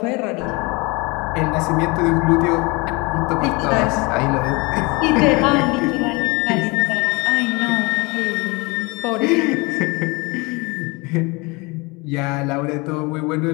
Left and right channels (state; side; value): quieter; right; 26.5 dB